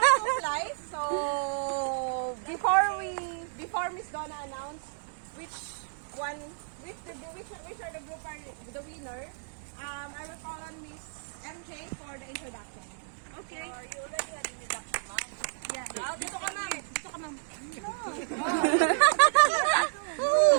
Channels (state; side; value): silent; left; digital silence